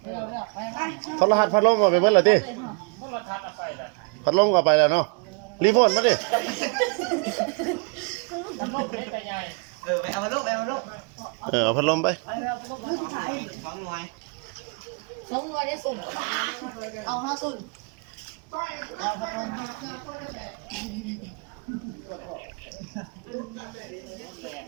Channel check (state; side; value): quieter; left; 36.5 dB